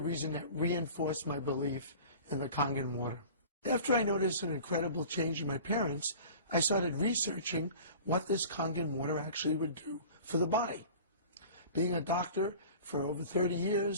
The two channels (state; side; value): inverted; both; correlation -0.41